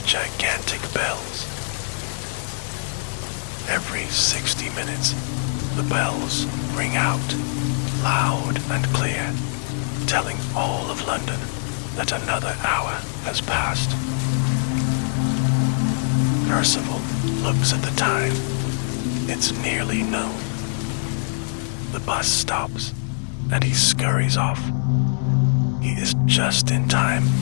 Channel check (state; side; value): silent; right; 63 dB below the other